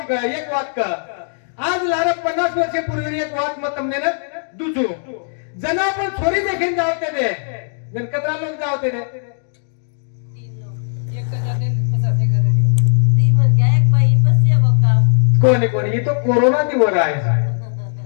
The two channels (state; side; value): silent; right; digital silence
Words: कर एक वात कर आज लारा 50 वर्षपूर्वी एक वात मत तमने न दुजू जन आपण छोरी देखील जावते दे जन कतरा लोक जावते दे कोणी कोणी ही तो कोरोना ती वर आहे